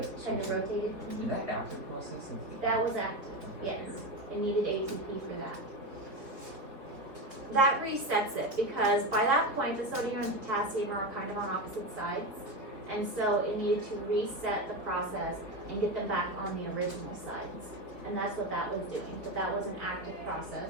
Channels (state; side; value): late; left; 4.2 ms